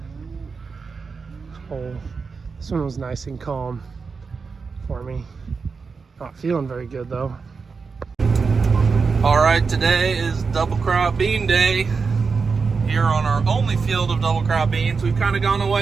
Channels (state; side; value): quieter; left; 5.0 dB